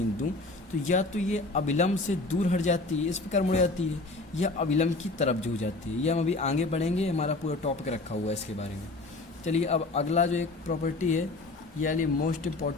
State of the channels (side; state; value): right; quieter; 3.2 dB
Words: दूँ, तो या तो ये अभिलंब से दूर हट जाती है, इस प्रकार मुड़ जाती है, या अभिलंब की तरफ झुक जाती है। ये हम अभी आगे बढ़ेंगे, हमारा पूरा टॉपिक रखा हुआ है इसके बारे में। चलिए अब अगला जो एक प्रॉपर्टी है, यानी मोस्ट